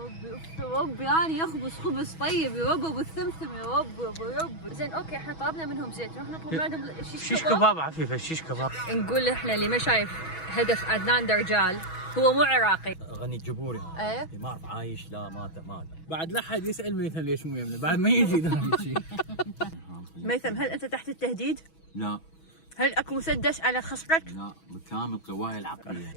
اوف يا رب، يعني يخبز خبز طيب يا رب، ابو الثمثم يا رب يا ابو رب. زين اوكي، احنا طلبنا منهم زيت، نروح نطلب من عندهم شيش كباب عفيفه، شيش كباب. نقول احنا اللي ما شايف هدف عدنان درجال هو مو عراقي. غني الجبوري هذا. ايه ما اعرف عايش لا مات. بعد لا حد يسال ميثم ليش مو يمنا، بعد ما يجي ذا شيء. ميثم، هل انت تحت التهديد؟ لا هل اكو مسدس على خصرك؟ لا، بكامل قواي العقليه.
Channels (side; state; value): right; late; 6.2 ms